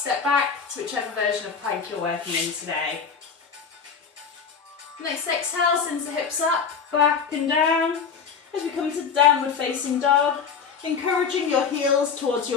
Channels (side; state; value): right; quieter; 6.1 dB